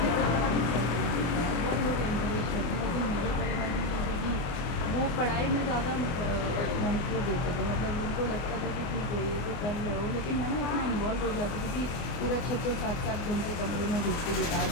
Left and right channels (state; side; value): late; right; 24 ms